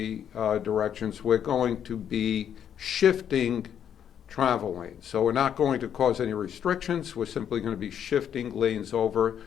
directions, we're going to be shifting travel lanes. So we're not going to cause any restrictions. We're simply going to be shifting lanes over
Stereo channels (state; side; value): quieter; right; 9.0 dB